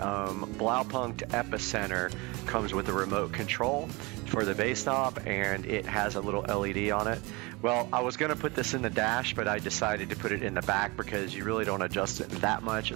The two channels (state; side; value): quieter; left; 25.5 dB